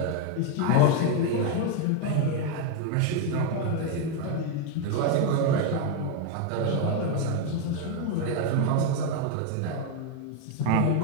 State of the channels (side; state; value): both; different; correlation 0.01